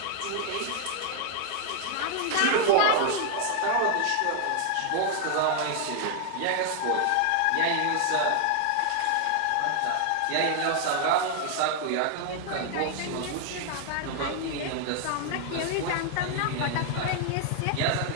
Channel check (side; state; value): both; different; correlation 0.00